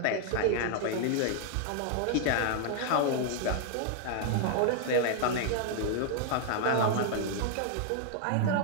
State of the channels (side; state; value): both; different; correlation 0.00